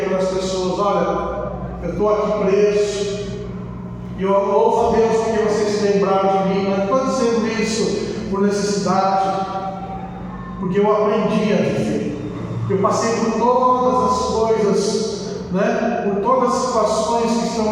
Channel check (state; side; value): identical; both; correlation 1.00